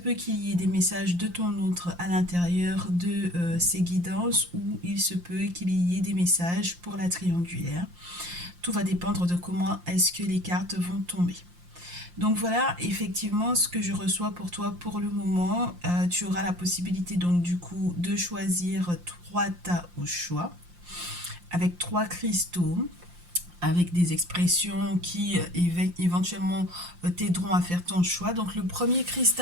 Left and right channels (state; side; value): late; left; 5.7 ms